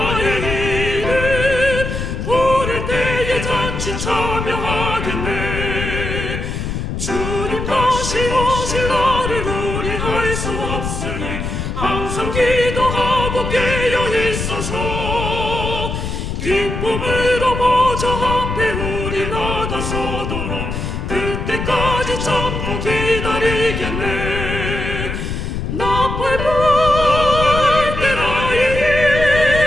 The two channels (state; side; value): noise; left; rumble, 4 dB below the sound